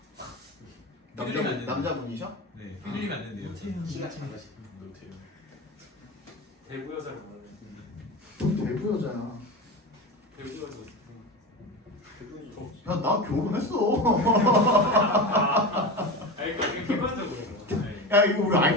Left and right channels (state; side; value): normal; both; correlation 0.25